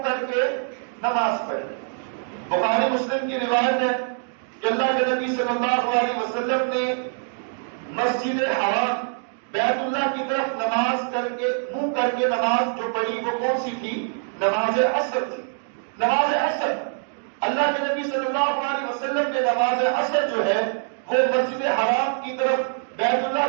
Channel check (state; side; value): silent; left; 61 dB below the other